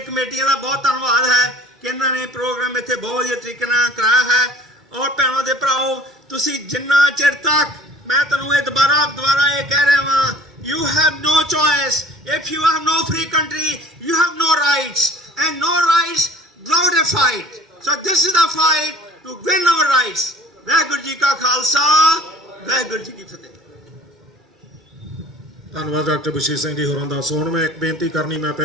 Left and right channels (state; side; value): normal; both; correlation 0.48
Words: ਕਮੇਟੀਆਂ ਦਾ ਬਹੁਤ ਧੰਨਵਾਦ ਹੈ ਕਿ ਇਹਨਾਂ ਨੇ ਪ੍ਰੋਗਰਾਮ ਇੱਥੇ ਬਹੁਤ ਵਧੀਆ ਤਰੀਕੇ ਨਾਲ ਕਰਾਇਆ ਹੈ। ਔਰ ਭੈਣੋ ਦੇ ਭਰਾਓ, ਤੁਸੀਂ ਜਿੰਨਾ ਚਿਰ ਤੱਕ, ਮੈਂ ਤੁਹਾਨੂੰ ਇਹ ਦੁਬਾਰਾ ਇਹ ਕਹਿ ਰਿਹਾ ਵਾਂ, you have no choice. If you have no free country, you have no rights, and no rights without a fight. So this is the fight to win our rights. Waheguru ji ਕਾ ਖਾਲਸਾ, ਵਾਹਿਗੁਰੂ ਜੀ ਕੀ ਫਤਿਹ। ਧੰਨਵਾਦ ਡਾਕਟਰ ਬਸ਼ੀਰ ਸਿੰਘ ਜੀ ਹੋਰਾਂ ਦਾ। ਸੋ ਹੁਣ ਮੈਂ ਇੱਕ ਬੇਨਤੀ ਕਰਨੀ ਮੈਂ